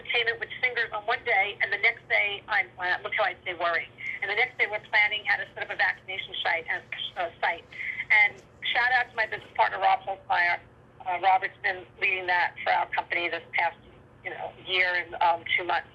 with singers on one day, and the next day, look how I say worrying. And the next day we're planning how to set up a vaccination site. And shout out to my business partner, Rob Holzmeyer. Robert's been leading that for our company this past year and 2 months.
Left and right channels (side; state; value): both; identical; correlation 1.00